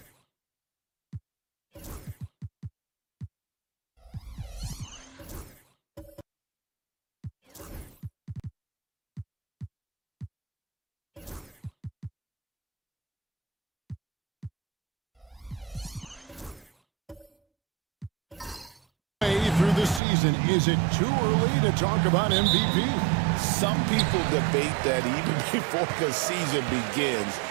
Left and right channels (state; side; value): drops out; left; at 20.0 s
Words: Through the season, is it too early to talk about MVP? Some people debate that even before the season begins.